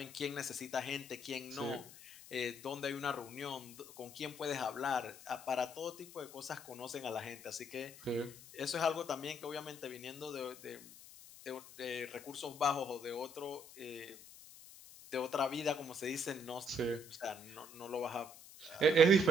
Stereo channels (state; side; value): noise; left; hiss, 17 dB below the sound